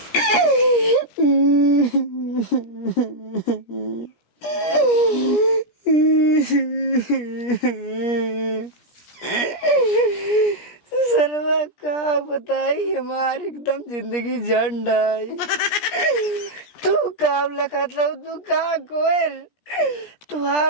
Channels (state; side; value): late; right; 17 ms